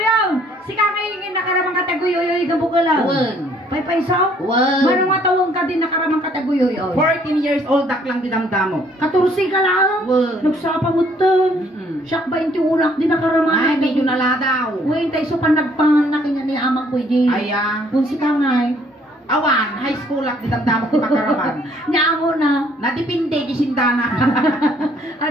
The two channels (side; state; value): both; normal; correlation 0.63